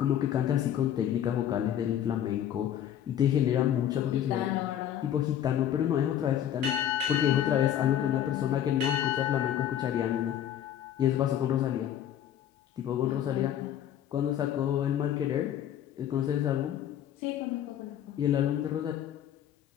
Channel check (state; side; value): quieter; right; 10.6 dB